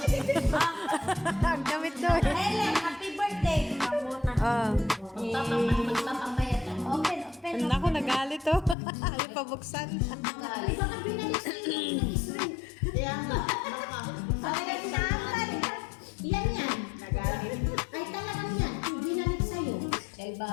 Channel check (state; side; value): drops out; right; at 8.8 s